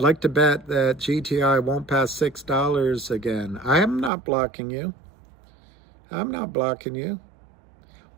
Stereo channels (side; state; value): left; drops out; at 4.1 s